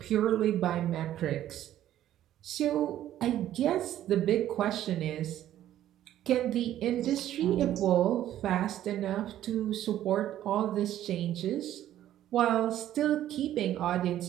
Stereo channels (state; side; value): quieter; left; 12.3 dB